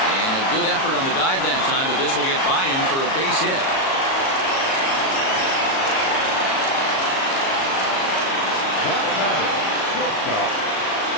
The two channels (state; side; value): late; right; 37 ms